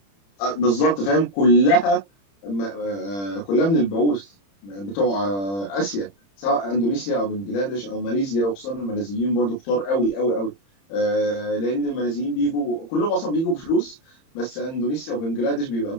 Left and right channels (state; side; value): late; right; 30 ms